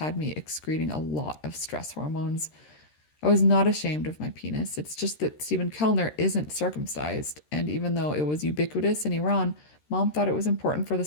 me excreting a lot of stress hormones. I was not ashamed of my penis. It's just that Stephen Kellner isn't circumcised, and even though it was ubiquitous in Iran, Mom thought it was important for the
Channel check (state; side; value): late; right; 13 ms